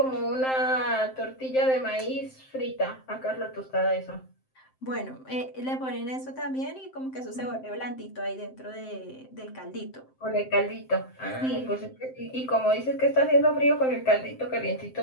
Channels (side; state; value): right; late; 7.7 ms